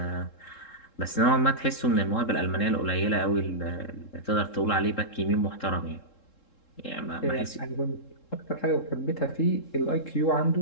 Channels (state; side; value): late; right; 3.7 ms